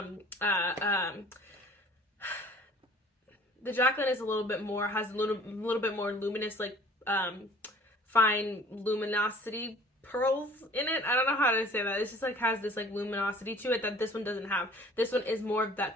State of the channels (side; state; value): both; normal; correlation 0.50